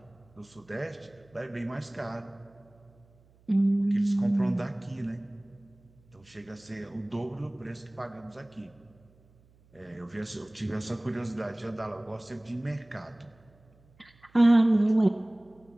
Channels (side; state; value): right; noise; hum, 30 dB below the sound